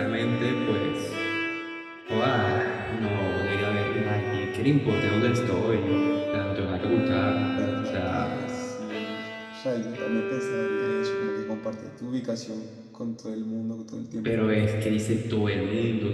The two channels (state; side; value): identical; both; correlation 1.00